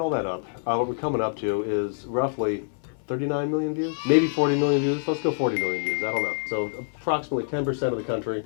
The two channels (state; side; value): silent; right; digital silence